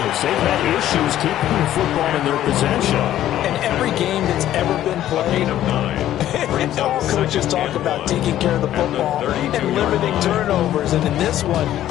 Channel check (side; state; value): right; quieter; 12.6 dB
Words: They've had issues keeping the football in their possession. And every game that's ever been played, all coaches talk about taking care of the football and limiting turnovers. And in this one,